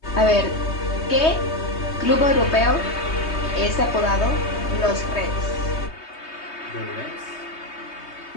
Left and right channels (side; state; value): right; late; 3.2 ms